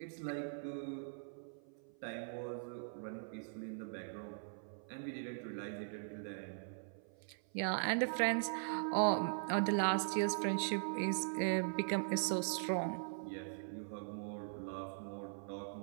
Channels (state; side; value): silent; left; 50 dB below the other